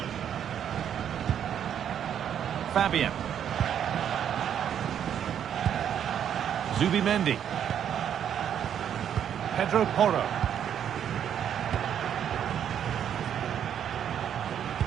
Fabian. Zubimendi. Pedro Porro.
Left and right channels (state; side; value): quieter; left; 9.2 dB